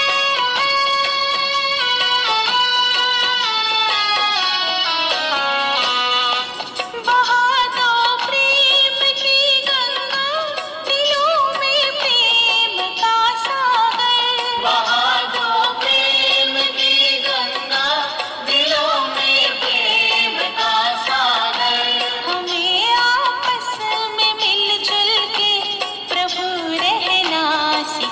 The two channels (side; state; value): both; identical; correlation 1.00